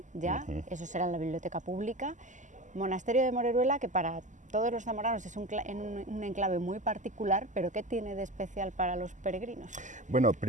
ya, eso será en la biblioteca pública. Monasterio de Moreruela, que para todos los zamoranos es un enclave muy particular, pero ¿qué tiene de especial para los peregrinos? Bueno,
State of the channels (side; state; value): left; late; 0.36 ms